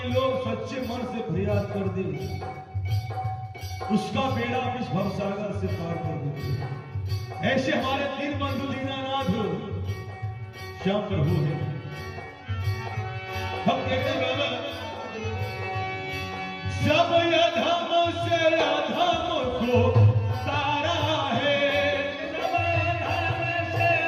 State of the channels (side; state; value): both; identical; correlation 1.00